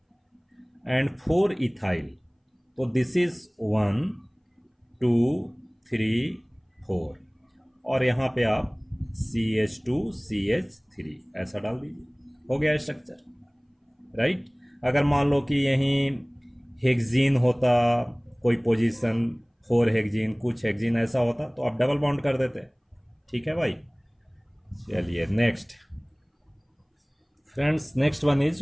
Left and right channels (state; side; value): identical; both; correlation 1.00